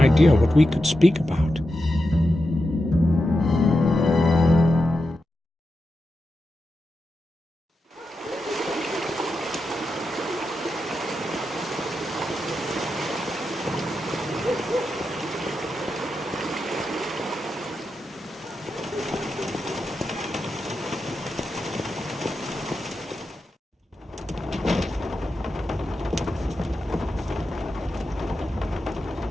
what we could speak about.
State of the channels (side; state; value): both; normal; correlation 0.88